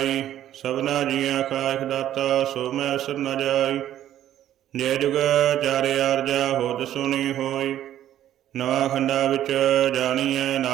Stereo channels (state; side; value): quieter; left; 11.9 dB